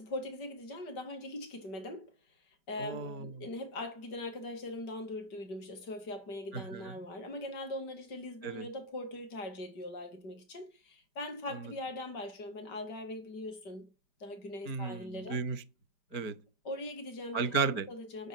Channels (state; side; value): late; right; 5.0 ms